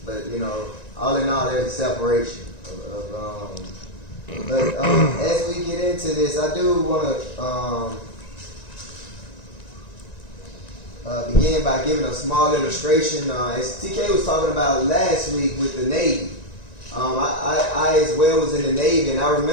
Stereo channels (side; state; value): right; late; 1.9 ms